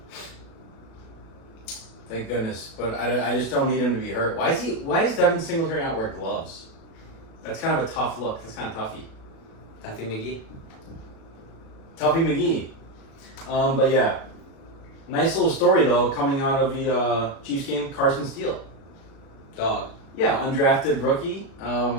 thank goodness. But I just don't need him to be hurt. Why does Devin Singletary not wear gloves? That's kind of a tough look. That's kind of toughy. Tuffy McGee. Tuffy McGee. But yeah. Nice little story though coming out of the Chiefs game. Carson Steele. Dog. Yeah, undrafted rookie.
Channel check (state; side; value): late; right; 37 ms